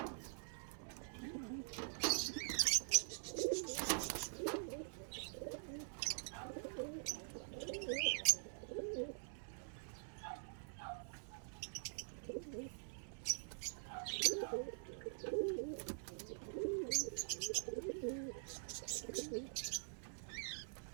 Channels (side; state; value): left; silent; digital silence